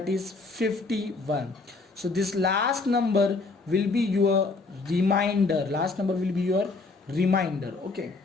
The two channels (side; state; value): right; quieter; 3.8 dB